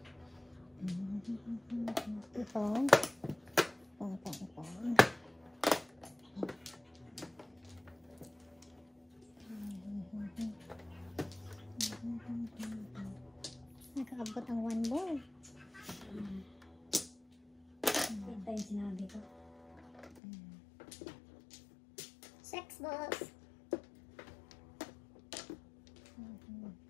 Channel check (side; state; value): right; drops out; at 20.2 s